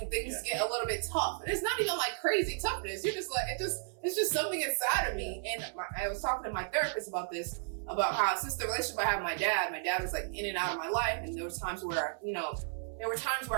things get a little bit tough. And it's not even crazy toughness. You're just it's just something inside of me. And I was talking to my therapist about this, about how since the relationship I had with my dad was in and out of my life. And there were times where,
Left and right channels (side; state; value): left; silent; 55 dB below the other